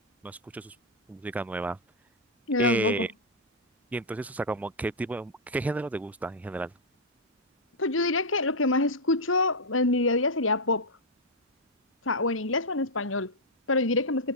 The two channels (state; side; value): normal; both; correlation -0.04